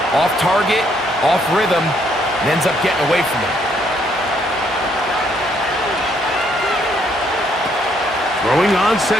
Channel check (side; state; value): both; normal; correlation 0.70